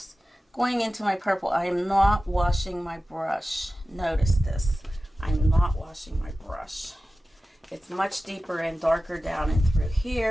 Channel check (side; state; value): both; normal; correlation 0.95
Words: Going into my purple, I am not washing my brush. Notice this. I'm not washing my brush. It's much deeper and darker down and through